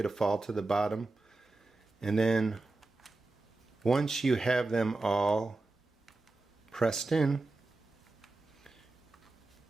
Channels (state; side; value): quieter; left; 3.2 dB